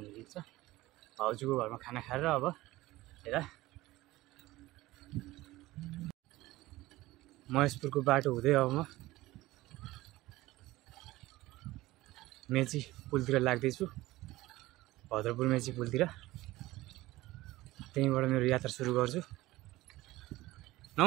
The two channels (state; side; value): quieter; left; 18.1 dB